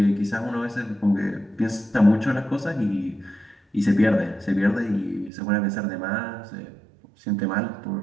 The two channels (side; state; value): left; drops out; at 5.3 s